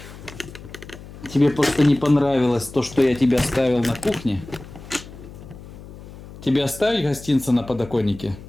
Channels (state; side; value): noise; left; hum, 16 dB below the sound